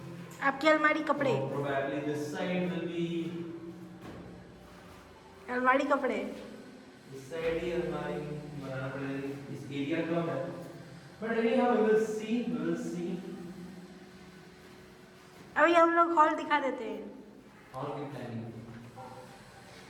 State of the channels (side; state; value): both; identical; correlation 1.00